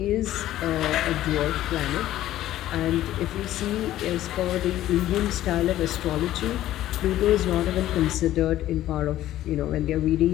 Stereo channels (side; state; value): right; quieter; 13.8 dB